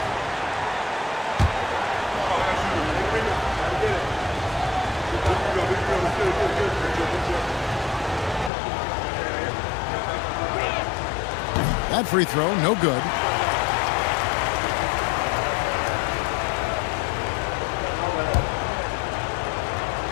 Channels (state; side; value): drops out; right; at 8.5 s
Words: That free throw, no good.